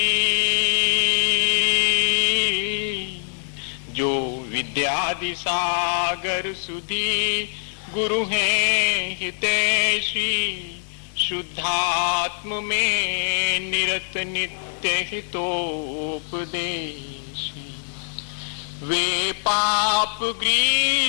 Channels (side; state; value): right; silent; digital silence